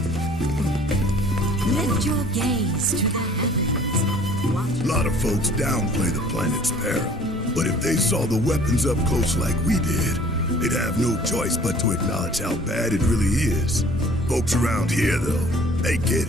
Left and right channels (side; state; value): both; normal; correlation 0.51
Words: Lift your gaze to the heavens. Watch. A lot of folks downplay the planet's peril, but if they saw the weapons up close like we did, they'd have no choice but to acknowledge how bad it really is. Folks around here, though, they get